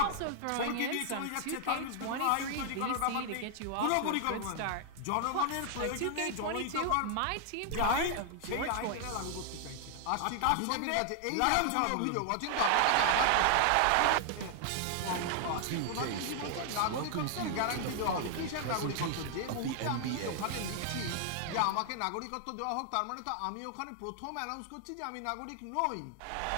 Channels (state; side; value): different; both; correlation 0.00